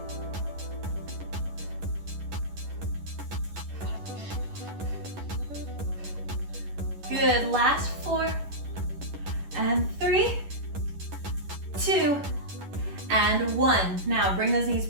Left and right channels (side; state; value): left; late; 11 ms